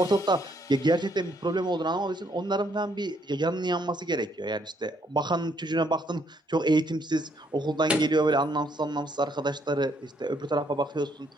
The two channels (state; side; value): normal; both; correlation 0.70